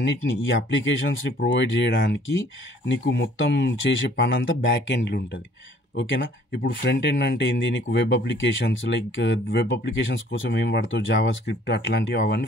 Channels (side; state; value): both; normal; correlation 0.57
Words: ఈ అప్లికేషన్స్ని ప్రొవైడ్ చేయడానికి నీకు మొత్తం చేసే పని అంతా బ్యాక్ ఎండ్లో ఉంటుంది, ఓకేనా? ఇప్పుడు ఫ్రంట్ ఎండ్ అంటే ఏంది, నీకు వెబ్ అప్లికేషన్స్, వెబ్ అప్లికేషన్స్ కోసం ఏం వాడతావు, జావా స్క్రిప్ట్ అట్లాంటివి, అవన్నీ